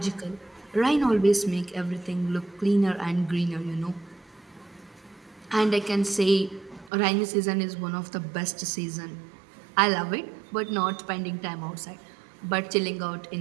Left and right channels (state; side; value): drops out; left; at 6.9 s